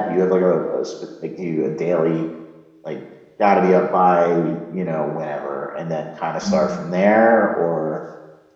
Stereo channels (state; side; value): identical; both; correlation 1.00